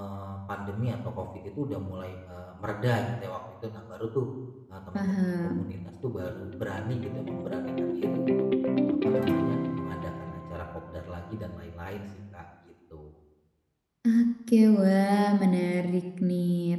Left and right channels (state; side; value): identical; both; correlation 1.00